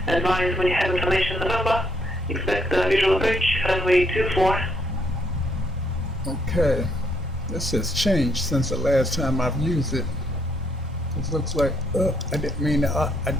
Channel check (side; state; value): both; normal; correlation 0.73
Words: Advise when you have information on the number. Expect the visual approach runway 24. Okay, this has changed since the last time I've used it. It looks like I didn't mean to